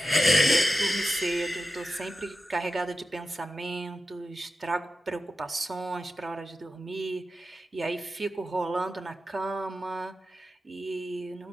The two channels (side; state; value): both; normal; correlation 0.91